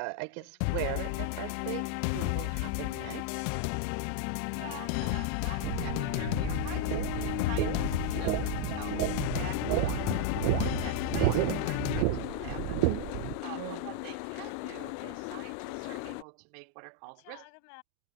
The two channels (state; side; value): different; both; correlation 0.00